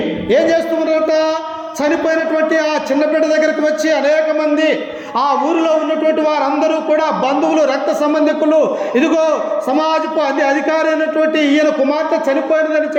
ఏం చేస్తున్నారట? చనిపోయినటువంటి ఆ చిన్న బిడ్డ దగ్గరికి వచ్చి అనేక మంది, ఆ ఊరిలో ఉన్నటువంటి వారందరూ కూడా బంధువులు, రక్త సంబంధికులు, ఇదిగో సమాజపు అధికారి అయినటువంటి ఈయన కుమార్తె చనిపోయినదని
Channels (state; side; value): identical; both; correlation 1.00